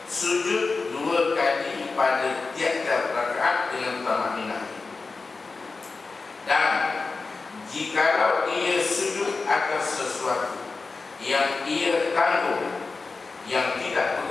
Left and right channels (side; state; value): right; quieter; 4.1 dB